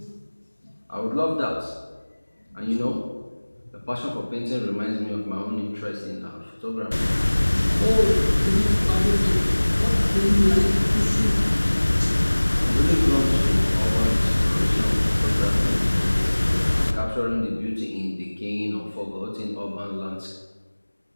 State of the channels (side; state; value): both; inverted; correlation -1.00